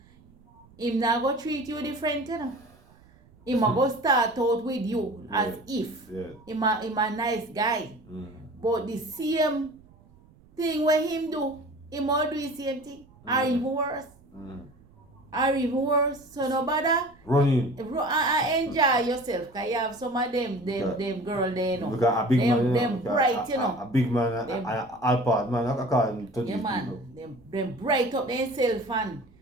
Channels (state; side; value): noise; right; rumble, 27 dB below the sound